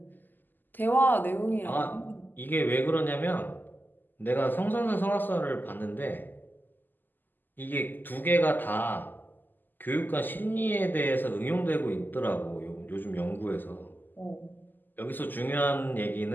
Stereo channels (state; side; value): late; right; 0.089 ms